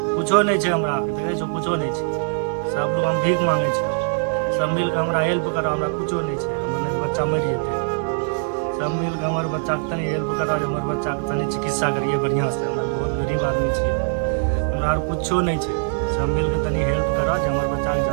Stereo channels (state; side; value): silent; left; digital silence